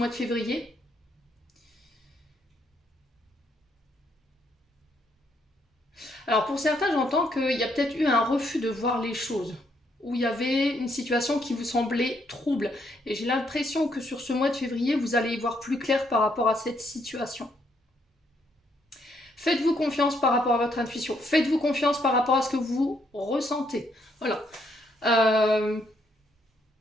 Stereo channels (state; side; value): normal; both; correlation 0.73